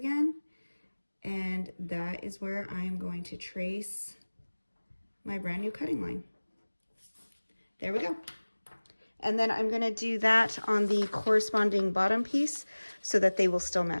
And that is where I am going to trace my brand new cutting line. There we go. And then I'm gonna do that on the corresponding bottom piece so that they will still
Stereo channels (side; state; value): both; inverted; correlation -1.00